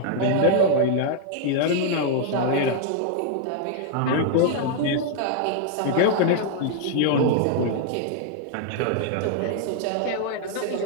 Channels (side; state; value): both; different; correlation 0.00